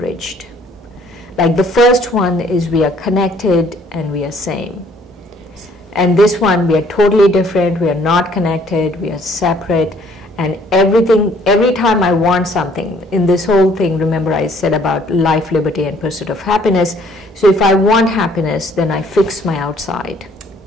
Like the first one is we are connected and we are same. And this one, we are totally different, we are not connected, we are separate, and everything, every time I want something, in this whole thing, remember I said about life, liberty, and pursuit of happiness. So if I want happiness, then I fix my outside.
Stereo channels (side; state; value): both; normal; correlation 0.61